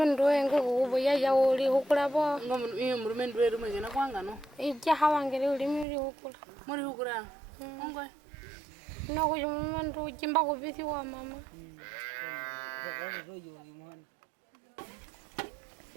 wengo kuboya ya oli hukula bo. Omulumendu weru mwegena kwanga no. Ija hawangere uli muri hukula. Muri hukula. Ongwe. No ko omulumendu jimba ko bisi wa mama.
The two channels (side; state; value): left; drops out; at 5.9 s